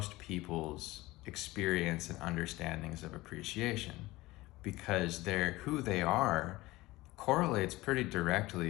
people's experience and understandings of appreciation, because who they are correlates pretty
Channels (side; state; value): right; quieter; 19.4 dB